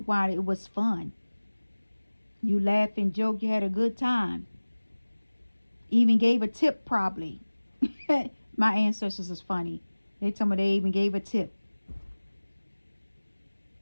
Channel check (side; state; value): both; inverted; correlation -1.00